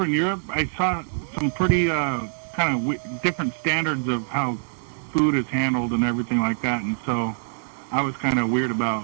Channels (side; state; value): left; silent; digital silence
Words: in Europe, I saw some pretty kind of different standards of how food is handled and everything like that, and so I was kind of weird about